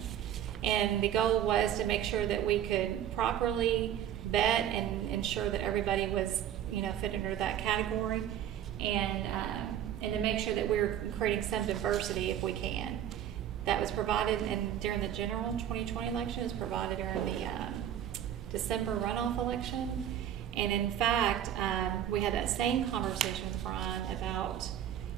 And the goal was to make sure that we could properly vet and ensure that everybody was, fit under that category, and to make sure that we're creating some diversity if we can. That was provided during the general 2020 election. It was provided during the December runoff election. And in fact, we had that same conversation with Brian about,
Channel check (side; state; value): left; quieter; 10.5 dB